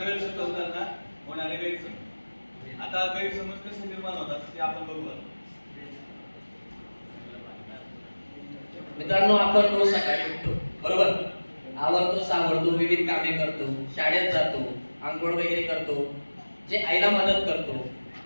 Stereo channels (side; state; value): both; inverted; correlation -1.00